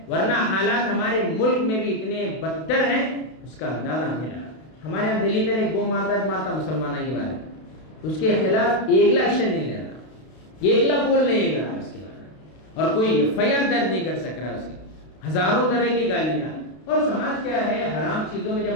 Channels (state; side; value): late; right; 32 ms